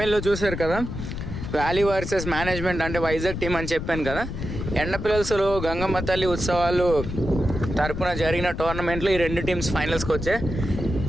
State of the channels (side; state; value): left; noise; rumble, 6 dB below the sound